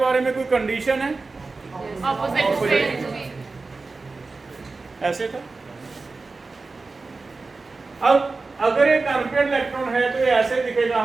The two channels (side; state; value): left; quieter; 3.8 dB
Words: में कोई कंडीशन है? ऑपोजिट। ऐसे था। अब अगर एक अनपेयर्ड इलेक्ट्रॉन है तो ये ऐसे दिखेगा